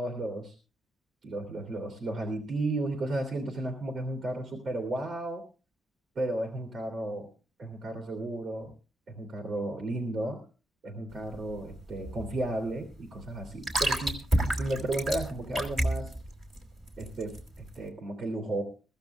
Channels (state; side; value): normal; both; correlation 0.83